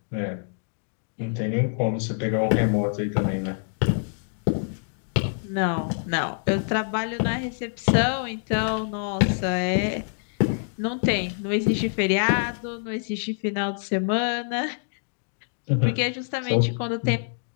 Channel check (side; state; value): right; silent; digital silence